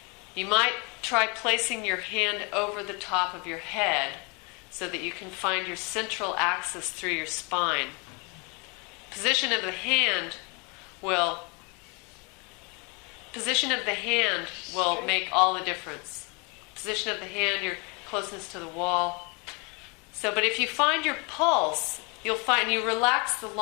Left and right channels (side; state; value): right; quieter; 31.6 dB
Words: You might try placing your hand over the top of your head so that you can find your central axis through your spine. Position of the hand will make all the difference. Position of the hand, your closeness to the wall. So, but if you find your pulse, you'll find you relax the